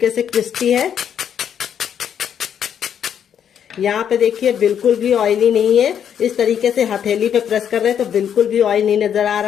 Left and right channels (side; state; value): right; quieter; 8.7 dB